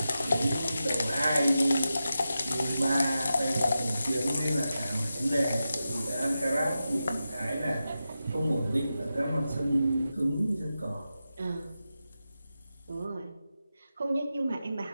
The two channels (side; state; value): both; inverted; correlation -0.91